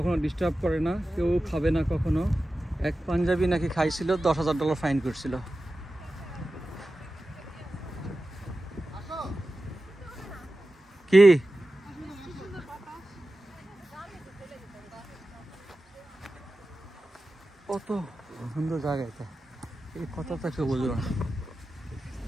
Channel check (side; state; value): both; normal; correlation 0.94